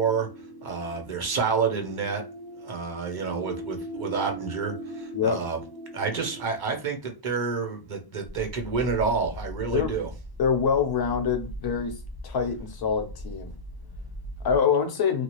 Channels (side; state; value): right; late; 1.0 ms